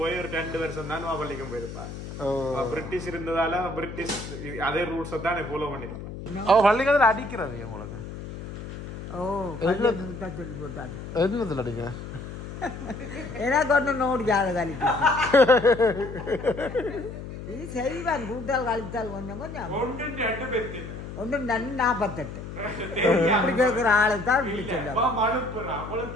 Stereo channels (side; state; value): left; noise; hum, 10 dB below the sound